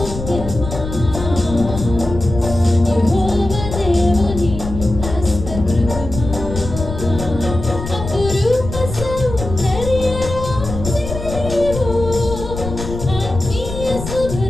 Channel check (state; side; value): noise; left; rumble, 8 dB below the sound